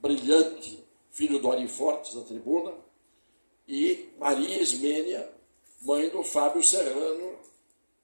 filho do Ari Fortes, da Tribuna, e Maria Ismênia, mãe do Fábio Serrano,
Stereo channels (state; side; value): inverted; both; correlation -1.00